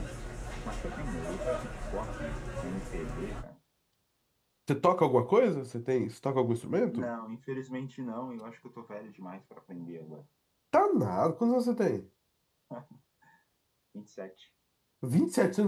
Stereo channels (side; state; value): both; identical; correlation 1.00